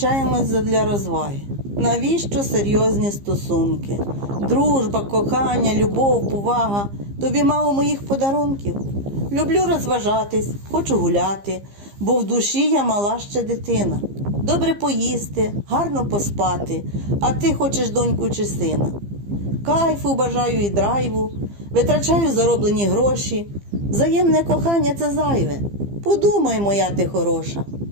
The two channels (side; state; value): left; late; 15 ms